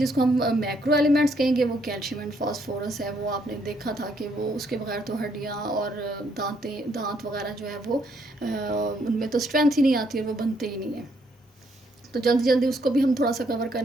کو ہم میکرو ایلیمنٹس کہیں گے وہ کیلشیم اینڈ فاسفورس ہے. وہ آپ نے دیکھا تھا کہ وہ اس کے بغیر تو ہڈیاں اور دانت وغیرہ جو ہے وہ ان میں تو اسٹرینتھ ہی نہیں آتی اور وہ بنتے ہی نہیں ہیں. تو جلدی جلدی اس کو بھی ہم تھوڑا سا کور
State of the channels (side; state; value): both; normal; correlation 0.71